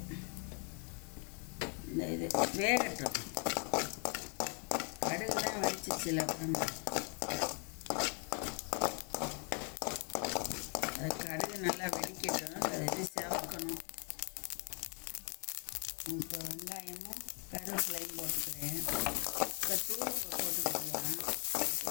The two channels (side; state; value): right; quieter; 38.6 dB